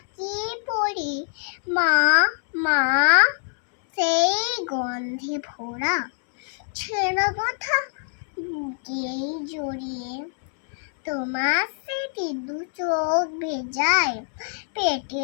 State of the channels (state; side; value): silent; right; 62 dB below the other